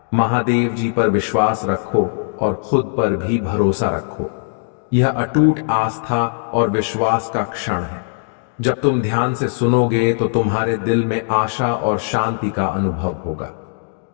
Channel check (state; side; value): silent; right; digital silence